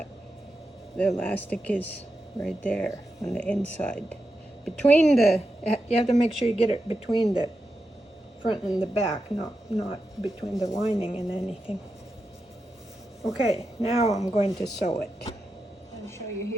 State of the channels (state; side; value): normal; both; correlation 0.88